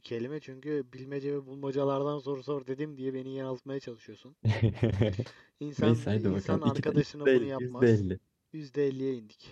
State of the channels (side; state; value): both; identical; correlation 1.00